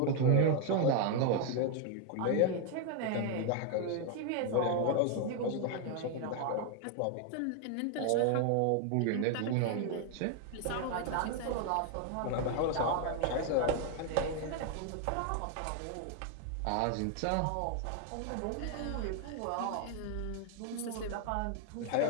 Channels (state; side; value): different; both; correlation 0.01